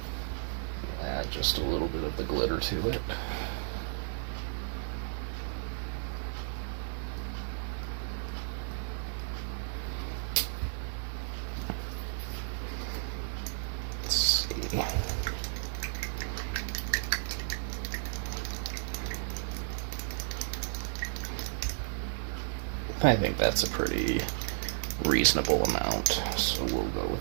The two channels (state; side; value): silent; left; 56 dB below the other